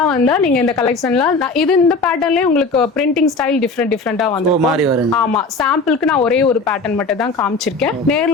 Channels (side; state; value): right; quieter; 3.7 dB